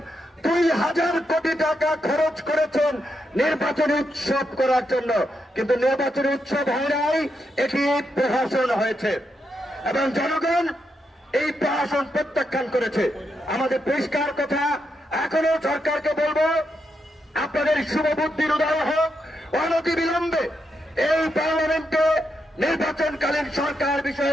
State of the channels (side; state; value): both; normal; correlation 0.83